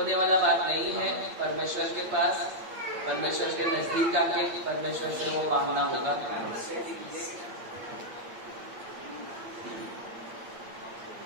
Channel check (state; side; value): late; left; 8.8 ms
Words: वाला बात नहीं है। परमेश्वर के पास, परमेश्वर के नजदीक आके परमेश्वर से वो मांगना होगा।